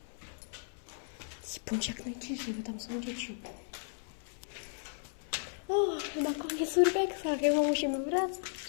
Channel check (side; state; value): right; silent; 54 dB below the other